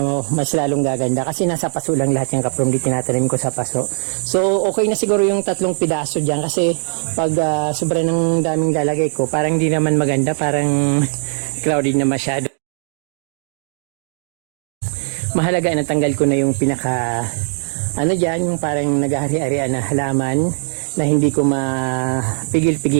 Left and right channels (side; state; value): left; silent; 64 dB below the other